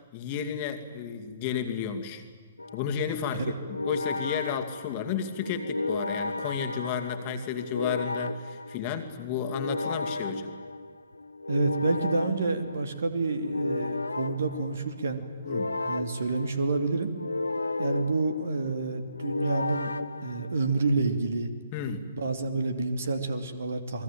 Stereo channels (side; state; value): both; inverted; correlation -0.68